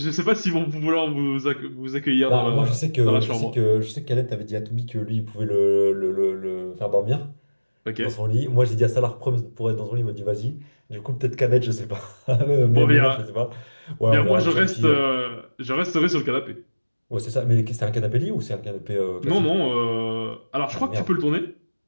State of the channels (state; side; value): inverted; both; correlation -1.00